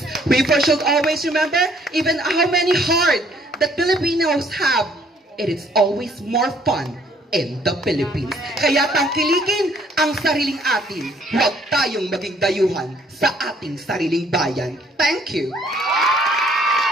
We should always remember, even how many hard that Filipinos have. It is always more fun in the Philippines. Kaya tangkilikin ang sariling atin. Huwag tayong maging dayuhan sa ating sariling bayan. Thank you.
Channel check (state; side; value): normal; both; correlation 0.63